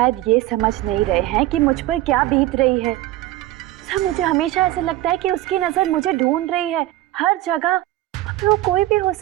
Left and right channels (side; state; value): left; quieter; 16.0 dB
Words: ये समझ नहीं रहे हैं कि मुझ पर क्या बीत रही है। सर मुझे हमेशा ऐसा लगता है कि उसकी नजर मुझे ढूंढ रही है हर जगह। वो कोई भी हो